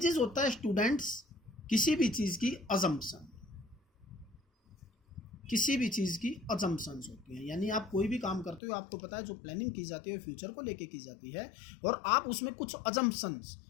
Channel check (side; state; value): right; drops out; at 8.6 s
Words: होता है स्टूडेंट्स किसी भी चीज़ की अजम्पशन, किसी भी चीज़ की अजम्पशंस होती हैं। यानी आप कोई भी काम करते हो, आपको पता है जो प्लानिंग की जाती है फ्यूचर को लेके की जाती है, और आप उसमें कुछ अजम्पशंस